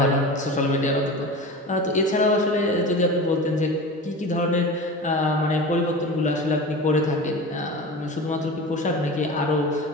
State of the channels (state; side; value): normal; both; correlation 0.31